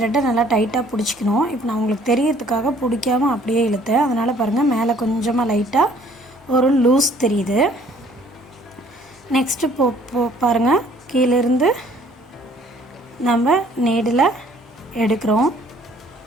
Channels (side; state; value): both; normal; correlation 0.58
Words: நல்லா டைட்டாக பிடிச்சிக்கணும். இப்போ நான் உங்களுக்கு தெரியறதுக்காக பிடிக்காமல் அப்படியே இழுத்தேன். அதனால் பாருங்கள், மேலே கொஞ்சமாக லைட்டாக ஒரு லூஸ் தெரியுது. நெக்ஸ்ட்டு பாருங்கள், கீழேருந்து நம்ம நீடில் எடுக்கிறோம்.